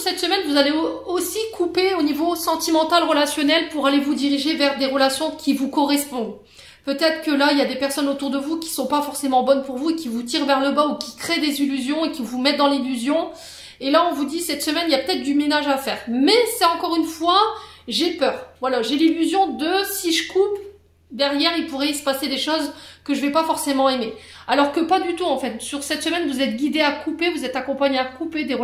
cette semaine, vous allez aussi couper au niveau sentimental, relationnel pour aller vous diriger vers des relations qui vous correspondent. Peut-être que là, il y a des personnes autour de vous qui sont pas forcément bonnes pour vous et qui vous tirent vers le bas ou qui créent des illusions et qui vous mettent dans l'illusion. Et là, on vous dit, cette semaine, il y a peut-être du ménage à faire. Mais c'est encore une fois, j'ai peur. Voilà, j'ai l'illusion de, si je coupe, derrière, il pourrait se passer des choses que je vais pas forcément aimer. Alors que pas du tout, en fait. Sur cette semaine, vous êtes guidé à couper, vous êtes accompagné à couper des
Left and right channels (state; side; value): identical; both; correlation 1.00